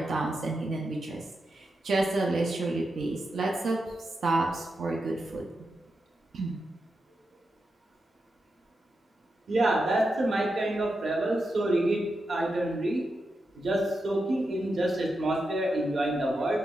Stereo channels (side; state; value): both; normal; correlation 0.87